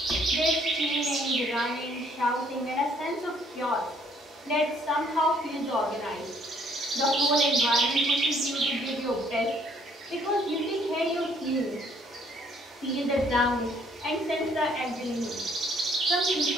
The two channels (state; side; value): normal; both; correlation 0.63